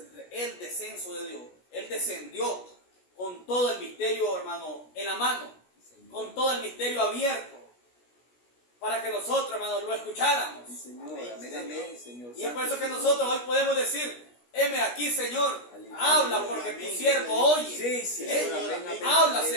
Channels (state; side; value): late; right; 16 ms